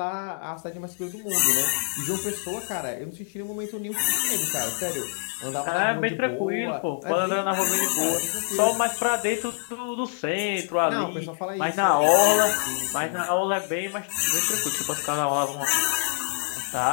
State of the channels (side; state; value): right; silent; 61 dB below the other